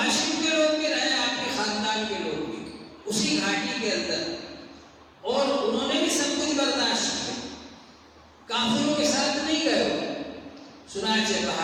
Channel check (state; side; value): identical; both; correlation 1.00